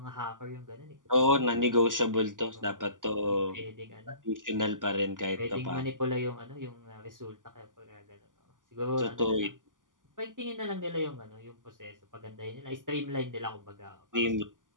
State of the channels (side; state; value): left; late; 0.88 ms